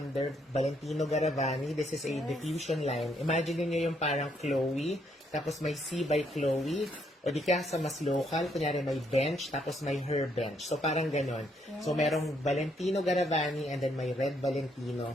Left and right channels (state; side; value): normal; both; correlation 0.72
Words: Valentino Garavani. This is a diffusion line. Imagine niyo yung parang Chloe, tapos may C by Chloe, o di kaya sa mas local, kunyari may bench, tapos may her bench. So, parang ganon. So, merong Valentino Garavani and then may Red Valentino.